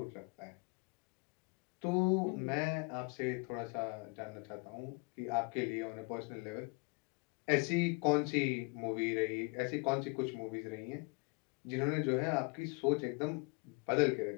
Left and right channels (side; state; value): right; quieter; 30.3 dB